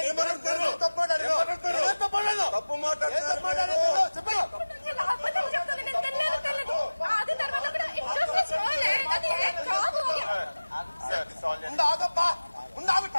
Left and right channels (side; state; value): both; inverted; correlation -1.00